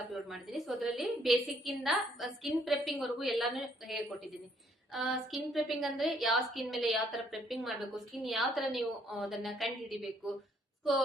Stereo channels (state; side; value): normal; both; correlation 0.67